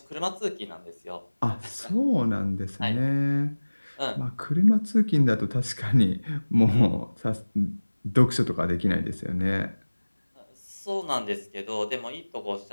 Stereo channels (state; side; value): inverted; both; correlation -1.00